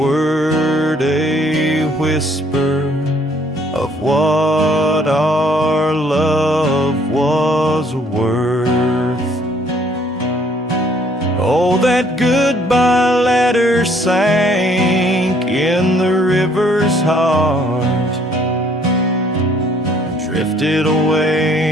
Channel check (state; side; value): normal; both; correlation 0.63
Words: a whisper of what our love was worth. Oh, that goodbye letter sank in the river's heart, drifted